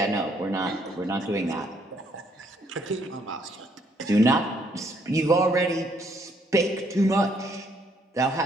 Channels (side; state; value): both; normal; correlation 0.69